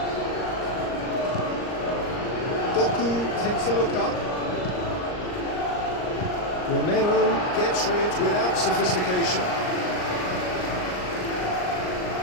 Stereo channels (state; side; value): late; right; 39 ms